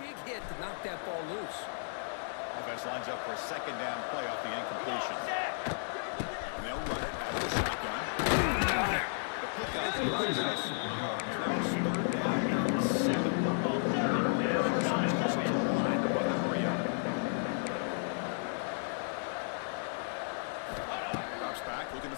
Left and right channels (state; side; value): silent; right; digital silence